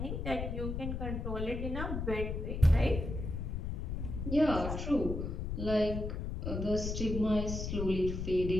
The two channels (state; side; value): noise; left; rumble, 3 dB below the sound